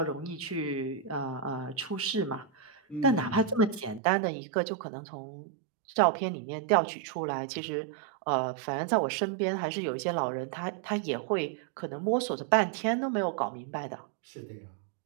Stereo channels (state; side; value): drops out; left; at 4.0 s